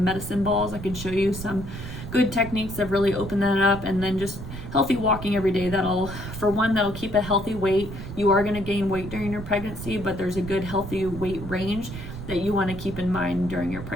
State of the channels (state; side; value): noise; right; rumble, 9 dB below the sound